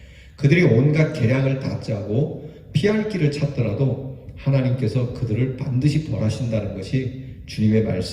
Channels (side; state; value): both; identical; correlation 1.00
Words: 그들이 온갖 계략을 다 짜고 피할 길을 찾더라도 하나님께서 그들을 반드시 벌하신다는 것이 주님의